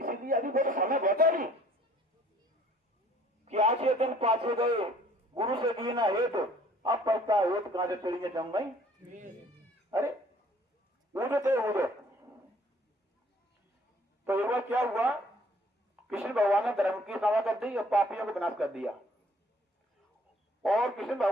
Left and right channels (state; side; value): normal; both; correlation 0.57